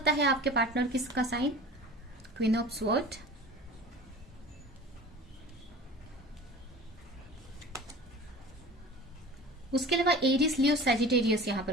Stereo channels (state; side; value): normal; both; correlation 0.39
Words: है आपके पार्टनर किसका साइन, क्वीन ऑफ स्वॉर्ड, उसके अलावा एरिस, लियो, सैजिटेरियस यहाँ